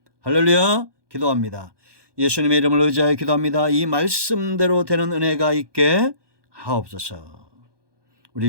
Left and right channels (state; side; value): late; left; 1.2 ms